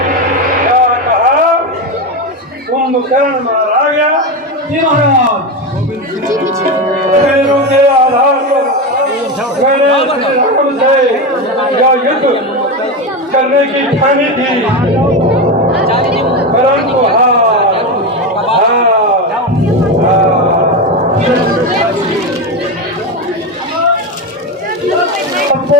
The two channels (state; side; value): normal; both; correlation 0.16